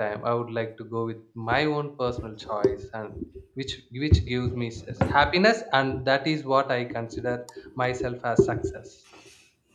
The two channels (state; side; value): identical; both; correlation 1.00